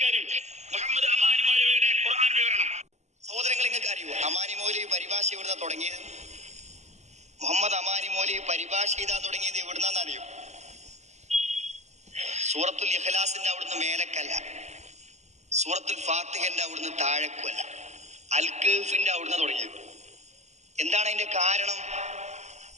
മുഹമ്മദ് അമാനി മൗലവിയുടെ ഖുർആൻ വിവരണം സഹോദരങ്ങൾ നിങ്ങൾക്ക് അറിയൂ. അമാനി മൗലവി പരിഭാഷ എവിടുന്നാ തുടങ്ങിയത്? മുഹമ്മദ് അമാനി മൗലവി പരിഭാഷ ചെയ്താ തുടങ്ങിയത് എവിടുന്നാന്ന് അറിയൂ? സൂറത്തുൽ ഇഖ്ലാസിന്റെ അവിടുന്ന് മേലക്കല്ല, സൂറത്തുൽ ഫാത്തിഹന്റെ അവിടുന്ന് താഴെക്കുമല്ല, അൽ കഹ്ഫിന്റെ അവിടുന്ന് തുടങ്ങിയത്. എന്താണ് അതിന്റെ കാരണം?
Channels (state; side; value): late; left; 0.33 ms